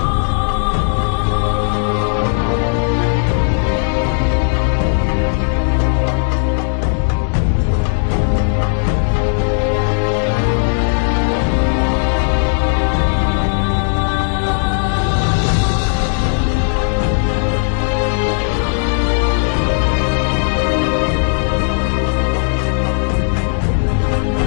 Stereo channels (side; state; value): right; silent; 65 dB below the other